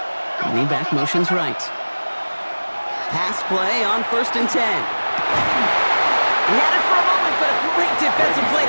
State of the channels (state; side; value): inverted; both; correlation -1.00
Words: Running back motions right. Pass play on 1st and 10. He had it for a moment, but a great defensive play